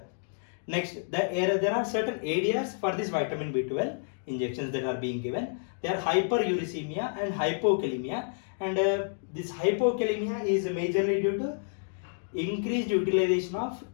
Next, there are certain areas for this vitamin B12 injections that are being given. They are hyperuricemia and hypokalemia, and this hypokalemia is majorly due to increased utilization of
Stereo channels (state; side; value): silent; right; digital silence